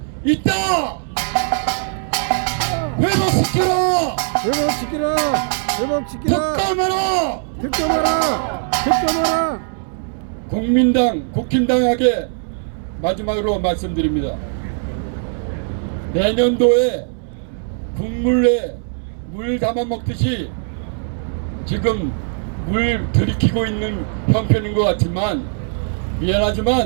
있다! 회복시키라! 회복시키라! 회복시키라! 특검하라! 특검하라! 특검하라! 국민당, 국힘당에게 마지막으로 말씀드립니다. 내년도에 국물에 물 담아 먹듯이 지금 물 들이키고 있는 형편인 것 같지만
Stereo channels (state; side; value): silent; left; 66 dB below the other